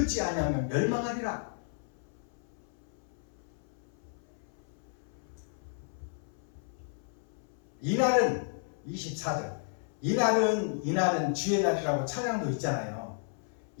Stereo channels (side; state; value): right; silent; 56 dB below the other